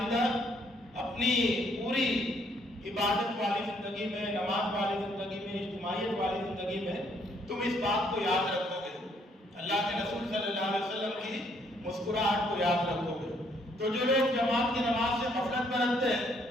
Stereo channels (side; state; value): both; normal; correlation 0.68